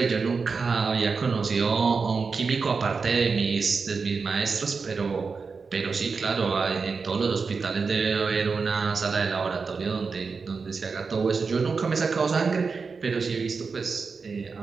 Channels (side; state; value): left; quieter; 4.9 dB